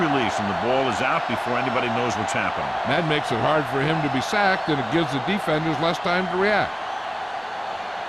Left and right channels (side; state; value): both; identical; correlation 1.00